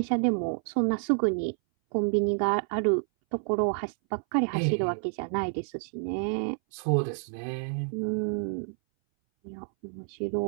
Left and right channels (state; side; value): silent; left; 59 dB below the other